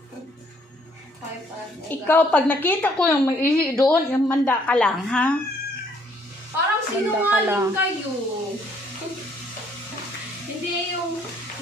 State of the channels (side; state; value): both; normal; correlation 0.65